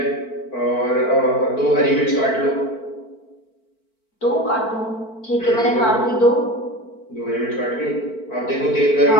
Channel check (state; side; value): late; right; 4.5 ms